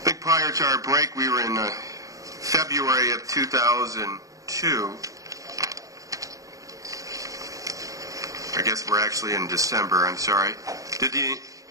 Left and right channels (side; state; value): left; late; 0.16 ms